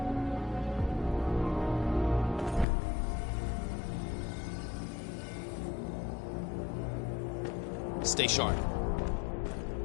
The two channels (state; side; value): drops out; right; at 2.7 s